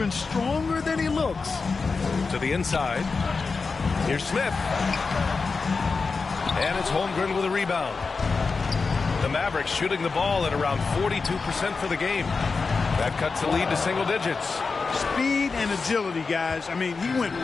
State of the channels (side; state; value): right; quieter; 4.5 dB